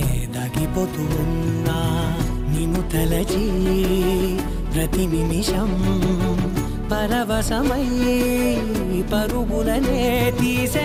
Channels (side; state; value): both; identical; correlation 1.00